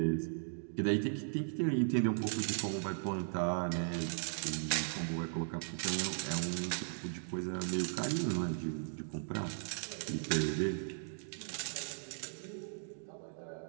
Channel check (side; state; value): left; silent; digital silence